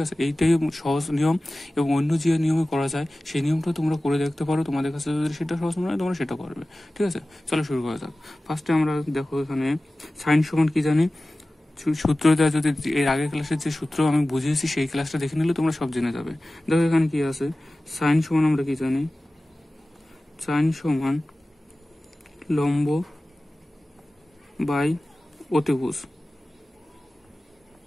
আছে, এইটাই সহজ নিয়ম এবং অন্য যে নিয়মে করা যায় সেই নিয়মটা তোমরা করে দেখতে পারো। তোমাদের কাছে যদি সেটা সহজ মনে হয় তোমরা সেটা করবে। ঠিক আছে, চলো শুরু করা যাক। ফার্স্টে আমরা দেখো এখানে সাইন সমান কি জানি, সূত্রটা যদি এর আগের ক্লাসের যে সূত্র আমি বুঝিয়েছি সেই ক্লাসটা দেখে নিলে তোমরা সব জেনে যাবে। দেখো এখানে কি আছে, সাইন সমান আমরা কি জানি, সাইন সমান লম্ব বাই অতিভুজ।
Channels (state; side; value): normal; both; correlation 0.97